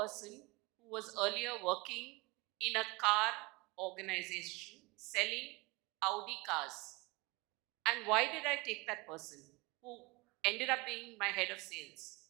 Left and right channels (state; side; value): quieter; left; 24.9 dB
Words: who was earlier working in a car organization selling Audi cars. And why did I take that person who ended up being my head of sales?